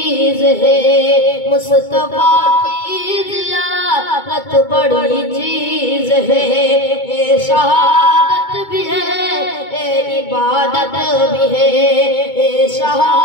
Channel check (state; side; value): late; right; 2.2 ms